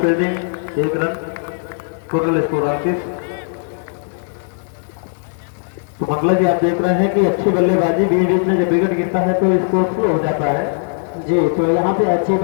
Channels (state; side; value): silent; right; 67 dB below the other